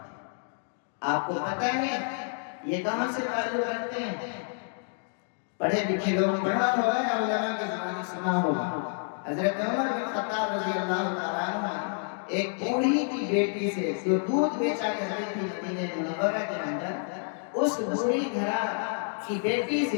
آپ کو پتہ ہے یہ کہاں سے تعلق رکھتے ہیں؟ پڑھے لکھے لوگ پڑھا ہوگا یا علماء کے زمانے سنا ہوگا۔ حضرت عمر بن خطاب رضی اللہ تعالیٰ عنہ ایک بوڑھی کی بیٹی سے جو دودھ بیچا کرتی تھی مدینہ منورہ کے اندر، اس بوڑھی گھرا کی بیٹی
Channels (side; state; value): right; silent; 59 dB below the other